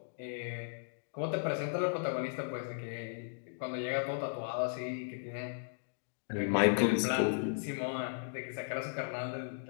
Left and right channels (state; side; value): silent; right; digital silence